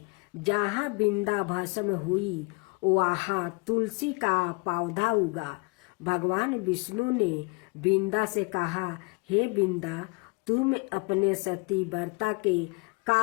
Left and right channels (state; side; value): quieter; right; 30.9 dB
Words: जहाँ बिंदा भस्म हुई वहाँ तुलसी का पौधा उगा। भगवान विष्णु ने बिंदा से कहा, हे बिंदा, तुम अपने सती व्रता के